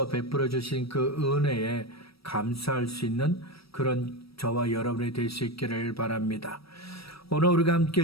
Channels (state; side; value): late; right; 0.76 ms